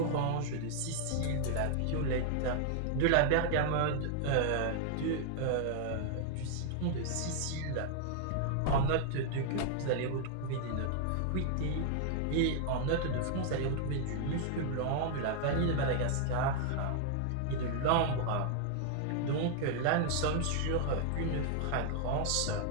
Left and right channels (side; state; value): both; different; correlation 0.00